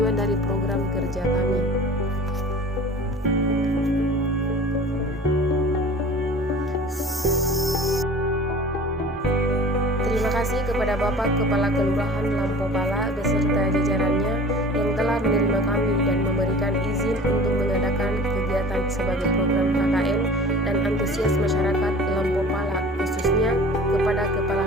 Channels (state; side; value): normal; both; correlation 0.43